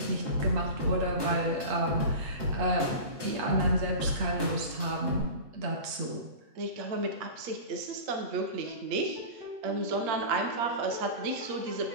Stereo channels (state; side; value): late; left; 8.4 ms